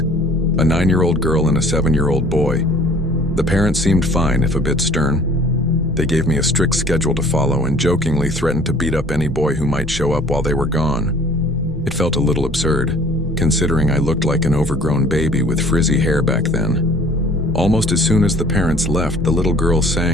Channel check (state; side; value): normal; both; correlation 0.52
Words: a 9-year-old girl and a 7-year-old boy. The parents seemed fine, if a bit stern. They gave me a strict schedule to follow and jokingly threatened to beat up any boy who might show up while they were gone. It felt a little absurd, considering I looked like an overgrown baby with frizzy hair back then. Almost as soon as the parents left, the little girl